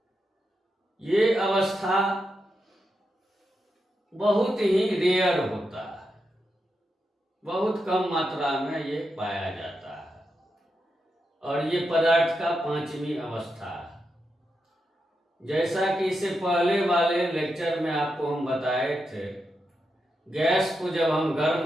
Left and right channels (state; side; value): normal; both; correlation 0.86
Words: ये अवस्था बहुत ही रेयर होता है, बहुत कम मात्रा में ये पाया जाता है और ये पदार्थ का पांचवी अवस्था है। जैसा कि इससे पहले वाले लेक्चर में आपको हम बताए थे, गैस को जब हम